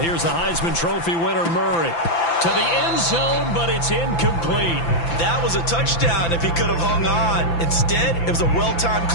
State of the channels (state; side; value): late; right; 5.9 ms